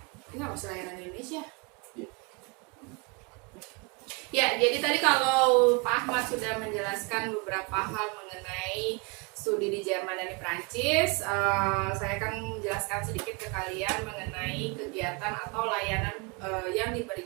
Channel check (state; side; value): quieter; left; 30.1 dB